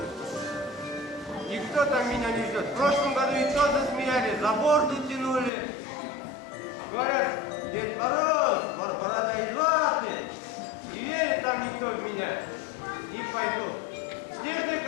Никто там меня не ждет. В прошлом году и то засмеяли, за борду тянули. Говорят, Дед Мороз, борода из ваты. Не верит там никто в меня. Не пойду. Снежная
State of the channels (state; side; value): drops out; right; at 5.5 s